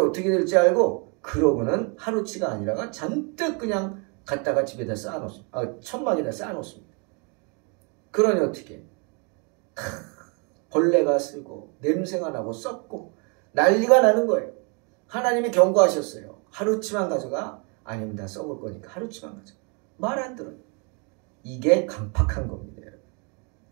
어떻게 될지 알고 그러고는 하루치가 아니라가 잔뜩 그냥 갖다가 집에다 쌓아놓습니다. 천막에다 쌓아놓습니다. 그러니 어떻게? 벌레가 쓰고 냄새가 나고 썩고 난리가 나는 거예요. 하나님이 경고하셨어요. 하루치만 가져가. 아닙니다. 썩을 거니까 하루치만 가져가. 말 안 들어요. 이게 강팍한 겁니다.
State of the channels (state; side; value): quieter; left; 34.0 dB